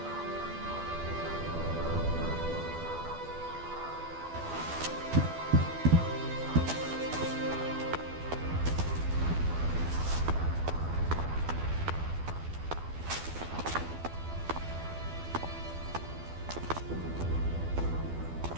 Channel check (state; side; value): late; left; 12 ms